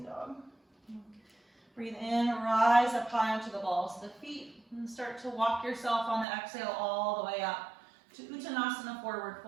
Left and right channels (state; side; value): drops out; left; at 6.2 s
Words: dog. Breathe in, rise up high onto the balls of the feet, and start to walk yourself on the exhale all the way up to Uttanasana, forward